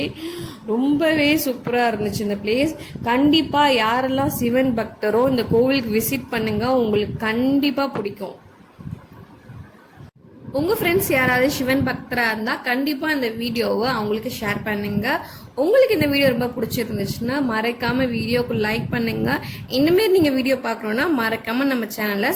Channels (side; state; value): both; identical; correlation 1.00